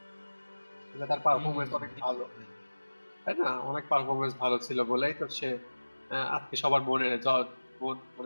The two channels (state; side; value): inverted; both; correlation -1.00